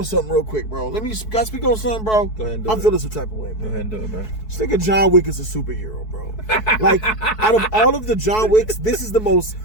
something real quick, bro. Can I speak on something, bro? Go ahead and do I'm feeling some type of way, bro. Go ahead and do it, bro. This nigga John Wick is a superhero, bro. Like, out of all of the John Wicks, this is the most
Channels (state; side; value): late; right; 4.6 ms